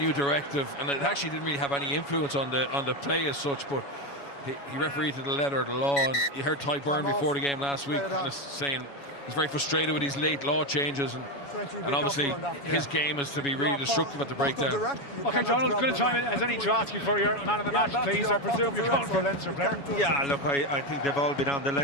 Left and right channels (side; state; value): right; late; 7.1 ms